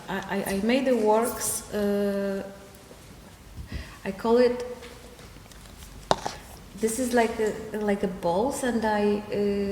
made the works. I call it. This is like a balls, and I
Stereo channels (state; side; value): identical; both; correlation 1.00